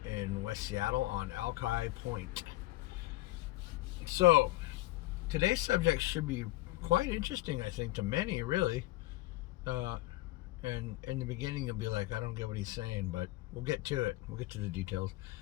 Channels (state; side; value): quieter; right; 18.2 dB